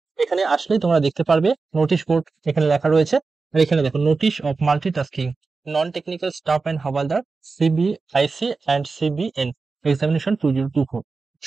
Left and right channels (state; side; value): quieter; left; 4.2 dB